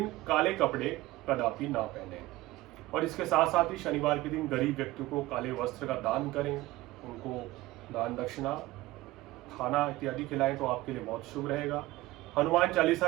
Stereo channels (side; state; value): left; quieter; 18.2 dB